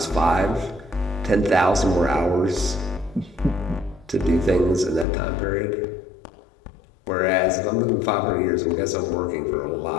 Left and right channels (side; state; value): right; drops out; at 5.1 s